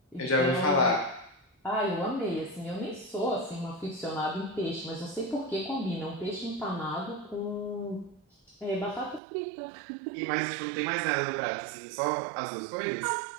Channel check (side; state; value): left; drops out; at 9.2 s